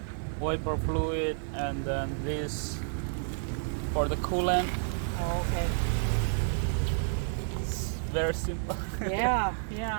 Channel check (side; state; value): left; silent; digital silence